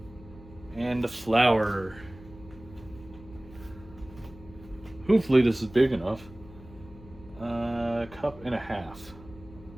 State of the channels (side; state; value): left; noise; hum, 19 dB below the sound